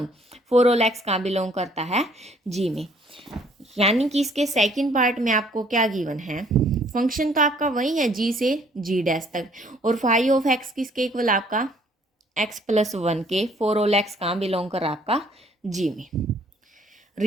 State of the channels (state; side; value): normal; both; correlation 0.61